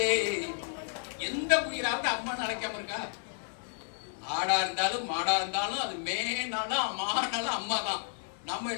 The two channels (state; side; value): silent; right; 57 dB below the other